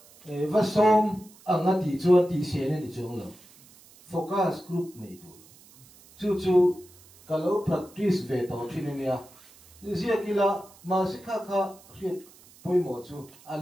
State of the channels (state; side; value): noise; right; hiss, 25 dB below the sound